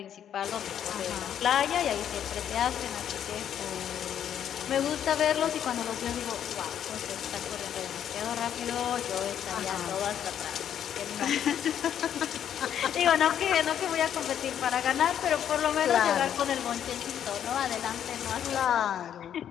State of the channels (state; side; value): quieter; right; 9.6 dB